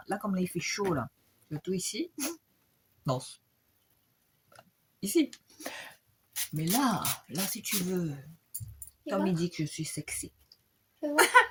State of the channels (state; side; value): identical; both; correlation 1.00